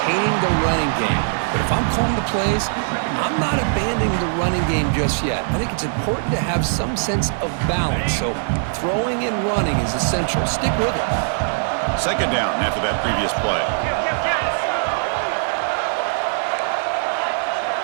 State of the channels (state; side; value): silent; left; digital silence